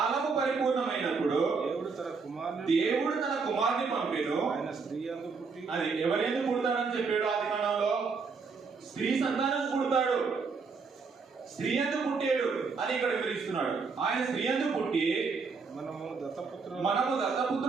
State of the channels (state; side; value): quieter; left; 4.9 dB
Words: పరిపూర్ణమైనప్పుడు దేవుడు తన కుమారుని పంపెను. అది ఎవరెందుకు పుడతాడని చెప్పాడు ఆది కాండంలో. స్త్రీ సంతానం పుడతాడు, స్త్రీ ఎందుకు పుట్టాడు అని ఇక్కడ వివరిస్తున్నాడు. ఆయన స్త్రీ ఎందుకు పుట్టి మనము